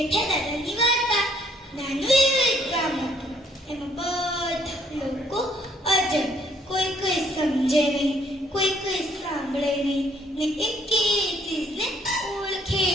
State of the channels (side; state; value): both; normal; correlation 0.65